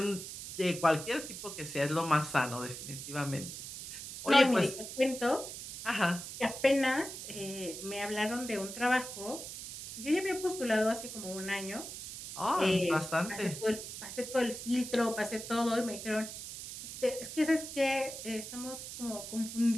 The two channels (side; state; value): right; noise; hiss, 9 dB below the sound